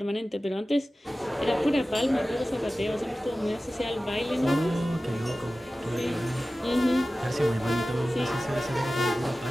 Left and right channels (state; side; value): normal; both; correlation 0.96